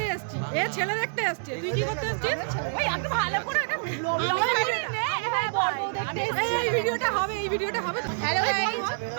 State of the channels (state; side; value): silent; left; digital silence